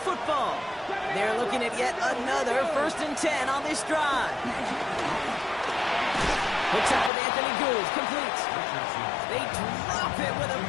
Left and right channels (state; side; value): drops out; right; at 7.1 s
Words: football. They're looking at yet another 1st and 10 on this drive. Hooks up with Anthony Gould, complete. They drop it with a